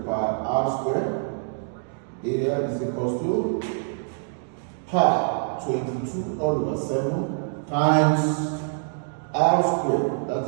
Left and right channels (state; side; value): silent; left; digital silence